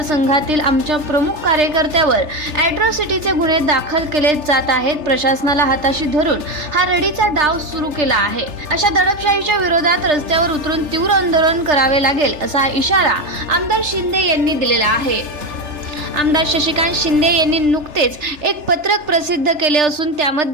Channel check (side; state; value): left; late; 3.3 ms